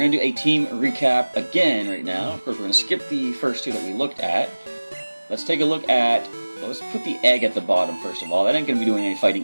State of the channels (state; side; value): inverted; both; correlation -1.00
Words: to do a team recap again right now. Of course, we're going to skip the first two that we looked at. Let's take a look at... Well, let's put the egg at the bottom first of all. That ain't going to be doing any